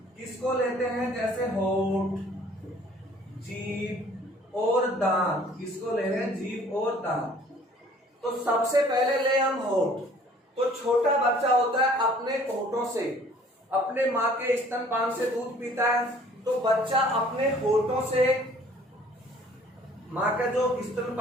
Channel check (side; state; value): both; normal; correlation 0.54